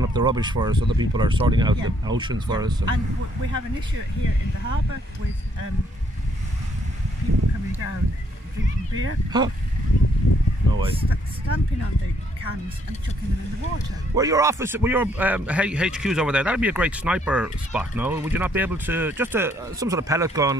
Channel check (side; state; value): both; normal; correlation 0.69